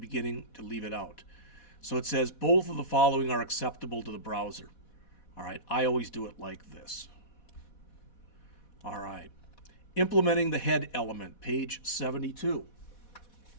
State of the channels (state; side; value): late; right; 4.1 ms